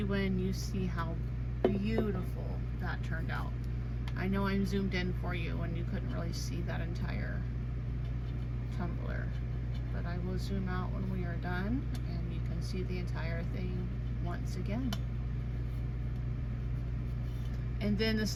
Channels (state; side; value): identical; both; correlation 1.00